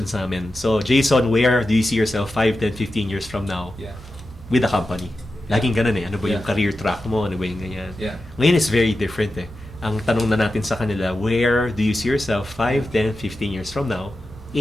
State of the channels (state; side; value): normal; both; correlation 0.91